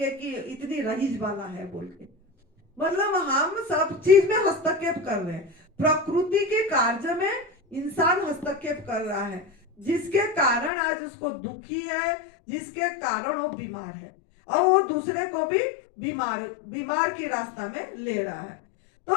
कि इतनी रईस वाला है बोल के। मतलब हम सब चीज में हस्तक्षेप कर रहे हैं। प्रकृति के कार्य में इंसान हस्तक्षेप कर रहा है, जिसके कारण आज उसको दुखी है, जिसके कारण वो बीमार है, और वो दूसरे को भी बीमार की रास्ता में ले रहा है।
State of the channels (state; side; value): drops out; right; at 10.7 s